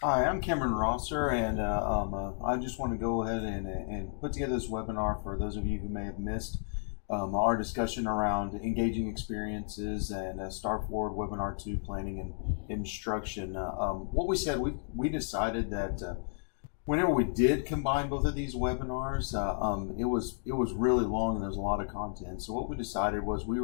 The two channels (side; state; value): right; silent; digital silence